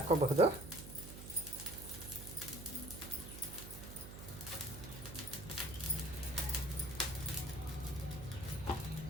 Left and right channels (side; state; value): right; noise; hum, 11 dB below the sound